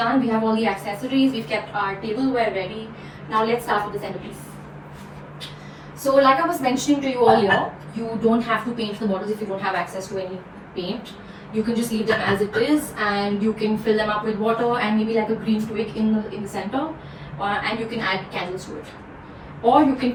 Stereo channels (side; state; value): both; identical; correlation 1.00